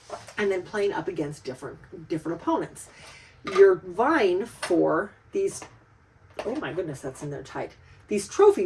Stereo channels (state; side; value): identical; both; correlation 1.00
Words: And then playing up against different opponents. You're vying for these, oh my goodness, that's in there tight. These